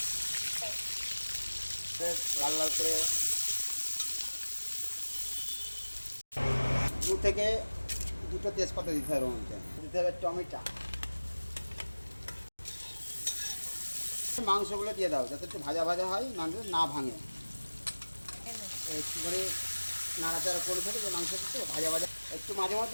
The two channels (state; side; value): inverted; both; correlation -1.00